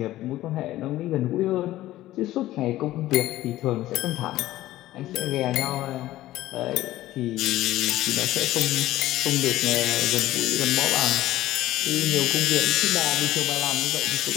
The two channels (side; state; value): right; quieter; 15.3 dB